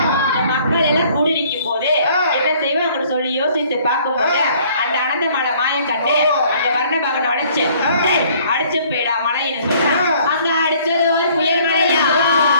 இந்த மக்கள் எல்லாம் கூடி நிற்கும் போது என்ன செய்வாங்க சொல்லி யோசித்து பார்க்கும் போது அந்த அனந்த மலை மாயம் கண்டு அந்த வர்ண பகனை உடைச்சு அடிச்சு போயிடா மலைன்னு சொல்ற அங்க அடிச்சது ஒரு புயல் மலையா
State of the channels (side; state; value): both; inverted; correlation -0.58